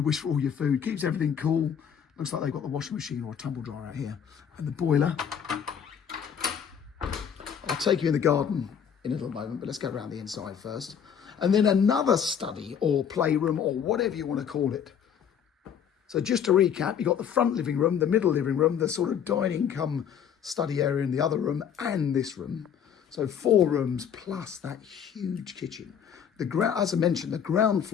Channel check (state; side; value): quieter; right; 8.1 dB